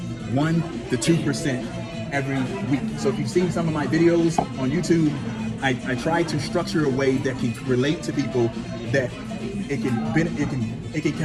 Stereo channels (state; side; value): identical; both; correlation 1.00